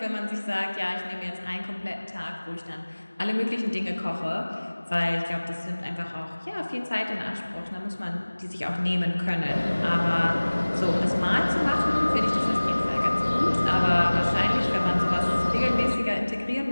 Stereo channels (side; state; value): both; inverted; correlation -1.00